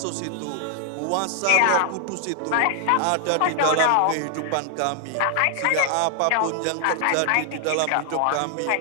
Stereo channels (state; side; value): different; both; correlation 0.00